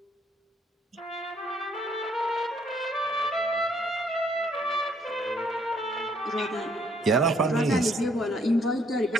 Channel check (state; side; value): normal; both; correlation 0.67